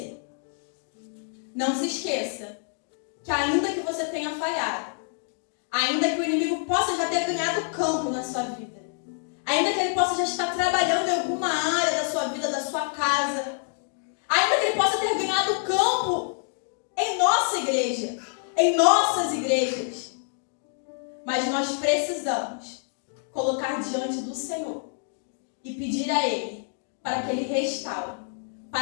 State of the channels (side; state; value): right; silent; 60 dB below the other